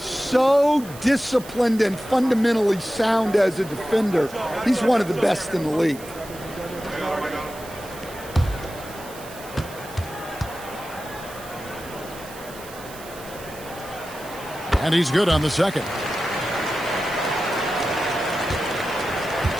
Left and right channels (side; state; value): right; noise; hiss, 17 dB below the sound